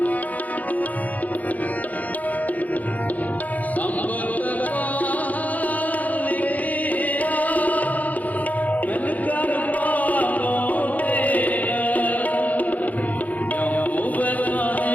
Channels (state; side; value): late; right; 0.077 ms